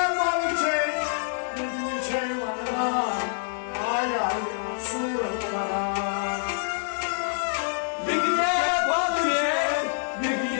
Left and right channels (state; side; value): silent; right; digital silence